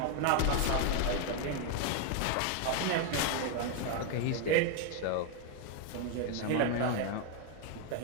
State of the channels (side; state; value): both; different; correlation 0.01